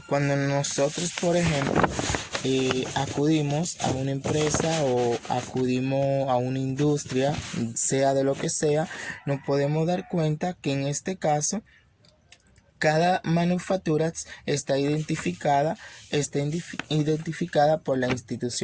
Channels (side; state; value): both; identical; correlation 1.00